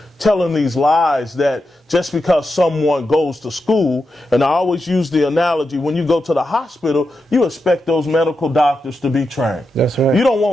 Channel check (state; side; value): normal; both; correlation 0.88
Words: telling these lies that just because someone goes to school, and I always use the analogy, when you go to the hospital, you expect those medical doctors to be trained. That's right. You don't